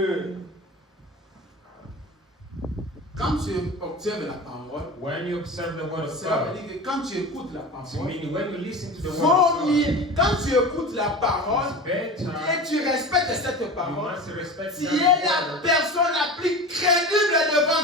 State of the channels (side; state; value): both; normal; correlation 0.31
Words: Quand tu observes la parole, When you observe the word of cela veut God, dire que quand tu écoutes la it parole, means when you listen to the word vaut of God, mieux, quand tu écoutes la parole it's better. et tu respectes cette You parole, must respect tu that es la word. personne la plus crédible